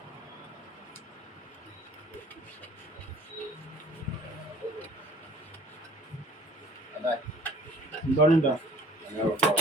You done that?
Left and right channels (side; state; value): both; normal; correlation 0.51